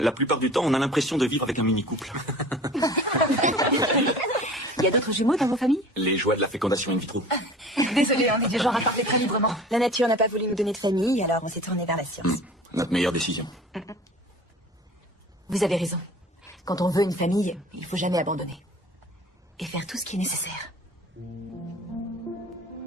plupart du temps, on a l'impression de vivre avec un mini-couple. Il y a d'autres jumeaux dans vos familles? Les joies de la fécondation in vitro. Désolée, on est du genre à parler très librement. La nature n'a pas voulu nous donner de famille, alors on s'est tourné vers la science. Notre meilleure décision. Vous avez raison. Quand on veut une famille, il faut jamais abandonner. Et faire tout ce qui est nécessaire.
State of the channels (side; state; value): both; normal; correlation 0.42